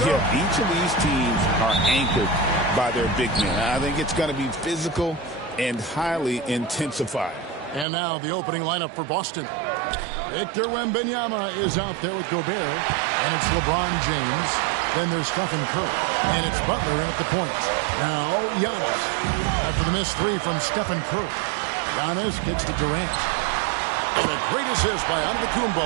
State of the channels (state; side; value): drops out; left; at 7.9 s